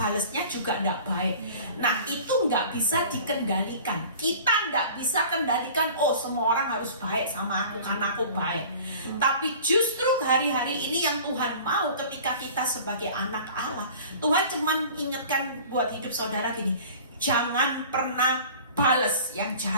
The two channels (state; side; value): inverted; both; correlation -0.44